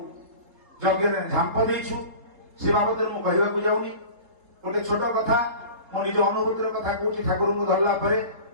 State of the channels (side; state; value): left; late; 3.9 ms